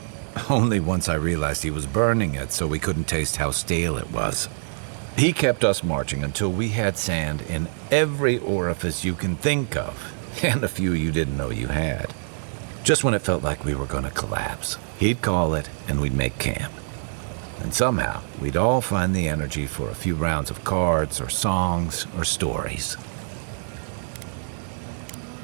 Only once I realized he was burning it so we couldn't taste how stale it was. He kept us marching until we had sand in every orifice you can think of, and a few you didn't know you had. Just when it felt like we were going to collapse, he'd call it and we'd make camp. And somehow, we'd all find the energy for a few rounds of cards or songs or stories.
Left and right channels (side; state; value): left; silent; digital silence